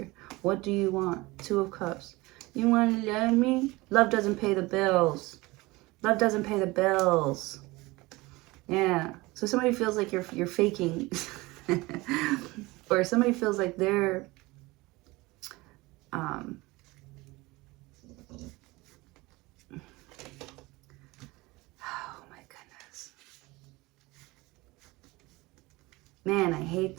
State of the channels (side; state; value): left; quieter; 21.8 dB